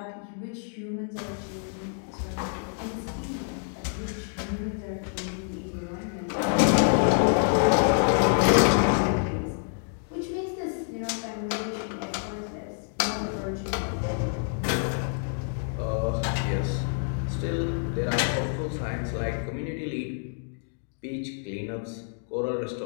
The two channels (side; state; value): right; silent; 59 dB below the other